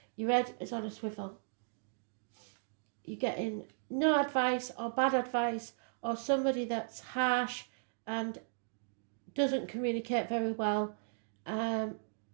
Your head is on a swivel. You're getting no advice or bad advice, or somebody that's harsh and doesn't communicate very well.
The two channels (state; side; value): silent; left; digital silence